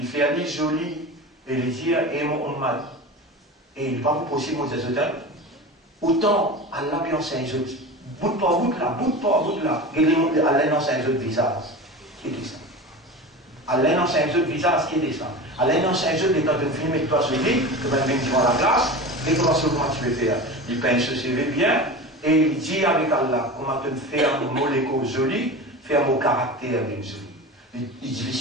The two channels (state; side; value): normal; both; correlation 0.30